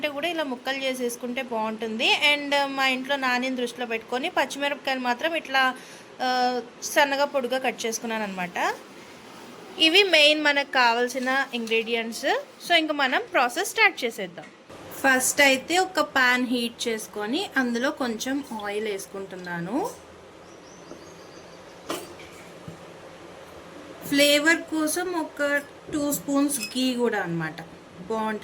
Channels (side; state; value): both; identical; correlation 1.00